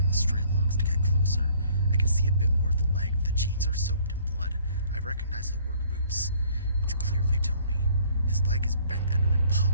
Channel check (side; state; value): both; inverted; correlation -0.58